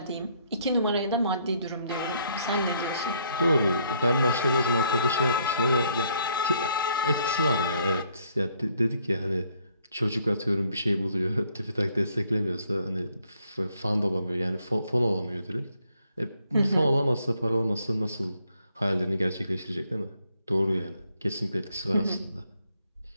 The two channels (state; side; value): inverted; both; correlation -0.68